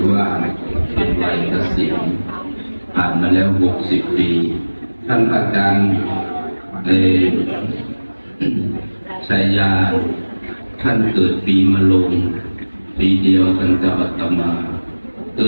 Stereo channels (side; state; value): both; inverted; correlation -1.00